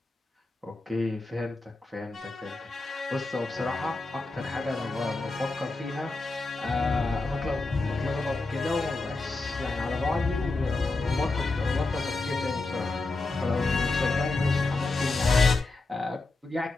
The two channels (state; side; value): quieter; right; 3.3 dB